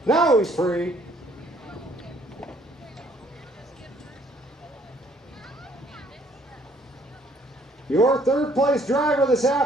Now he's free. Your third place driver this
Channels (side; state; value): both; normal; correlation 0.62